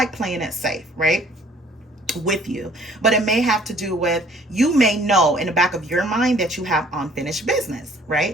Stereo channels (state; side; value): normal; both; correlation 0.56